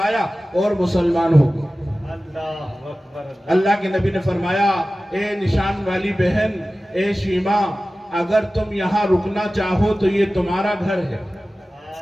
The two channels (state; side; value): normal; both; correlation 0.96